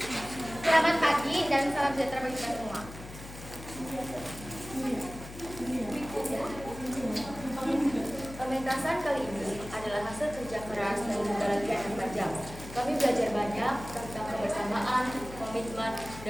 Selamat pagi dan salam sejahtera bagi kita semua. Pementasan kali ini adalah hasil kerja keras dan juga latihan yang tajam. Kami belajar banyak tentang kebersamaan, komitmen,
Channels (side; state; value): left; noise; hum, 14 dB below the sound